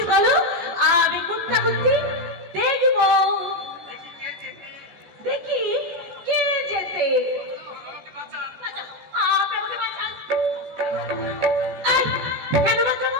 বলো, আমি কোনটা বলছি দেখব। দেখি কে যেতে। আপনি আমাকে বাঁচান। কেন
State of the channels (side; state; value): left; late; 14 ms